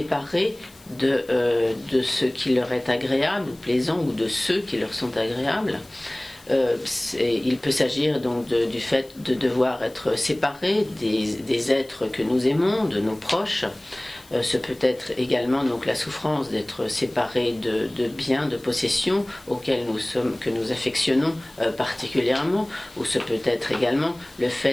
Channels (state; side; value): noise; left; hiss, 25 dB below the sound